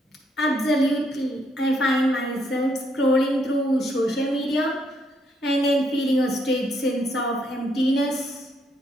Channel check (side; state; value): both; normal; correlation 0.73